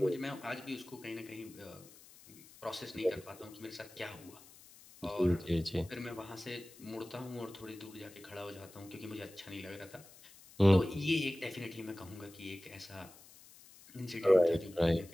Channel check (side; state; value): left; noise; hiss, 21 dB below the sound